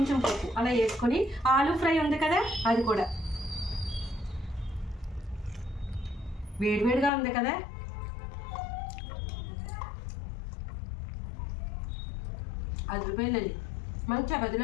పప్పు అలా వేసుకొని, ఆలూ ఫ్రై ఉంది కదా అది కూడా వేడివేడిగా ఉంది కదా, అది రూపాయలండి. మన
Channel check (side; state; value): right; drops out; at 7.1 s